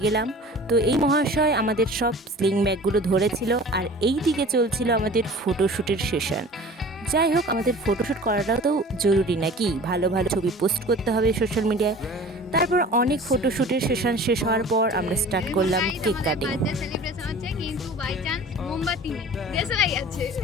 গেলাম। তো এই মহাশয় আমাদের সব স্লিং ব্যাগগুলো ধরেছিল, আর এই দিকে চলছিল আমাদের ফটোশ্যুটের সেশন। যাই হোক, আমাদের ফটোশ্যুট করাটাও তো জরুরি নাকি, ভালো ভালো ছবি পোস্ট করতে হবে সোশ্যাল মিডিয়ায়। তারপর অনেক ফটোশ্যুটের সেশন শেষ হওয়ার পর আমরা স্টার্ট করলাম কেক কাটিং। সেলিব্রেশন হচ্ছে কিন্তু বাই চান্স মোমবাতি নেই, দেশলাই আছে।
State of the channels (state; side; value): normal; both; correlation 0.42